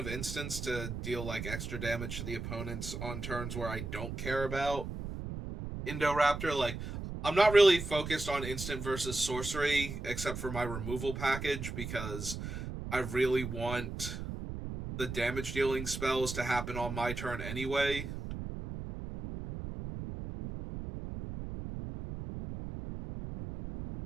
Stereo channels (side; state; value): right; noise; rumble, 6 dB below the sound